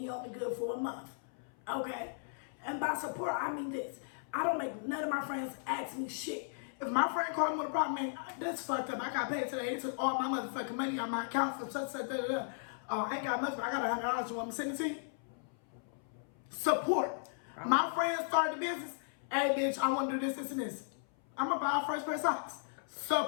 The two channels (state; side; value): silent; right; 54 dB below the other